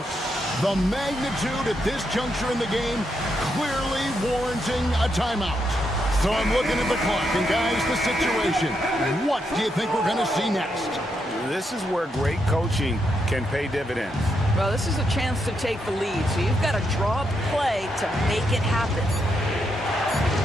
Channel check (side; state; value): both; normal; correlation 0.81